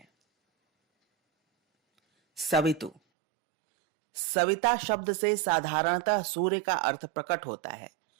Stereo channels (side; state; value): left; drops out; at 3.0 s